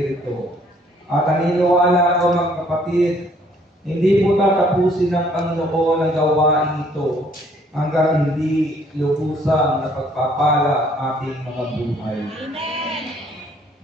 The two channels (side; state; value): both; normal; correlation 0.62